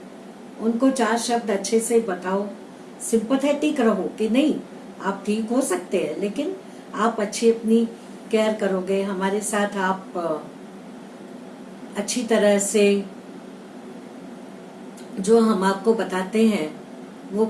उनको चार शब्द अच्छे से बताओ, सिंपैथेटिक रहो कि नहीं आप ठीक हो सकते हैं, लेकिन आप अच्छी अपनी केयर करोगे, हमारे साथ आप अच्छी तरह से जो हम आपको बताते हैं वो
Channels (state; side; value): identical; both; correlation 1.00